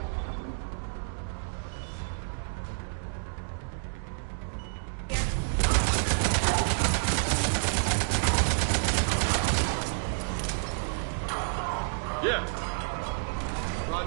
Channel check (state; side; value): silent; left; digital silence